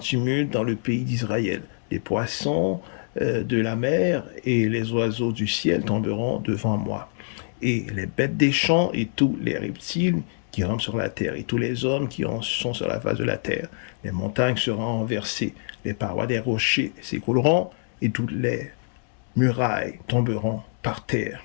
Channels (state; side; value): silent; right; 62 dB below the other